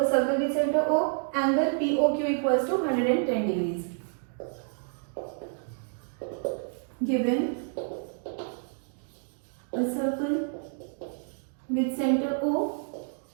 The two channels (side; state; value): left; silent; 59 dB below the other